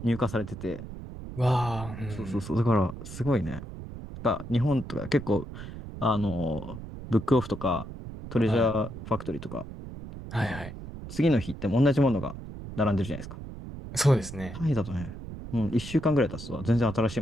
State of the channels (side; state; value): right; noise; rumble, 11 dB below the sound